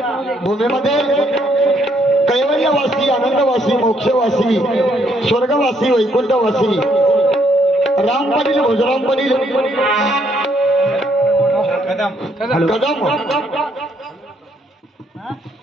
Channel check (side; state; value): both; normal; correlation 0.70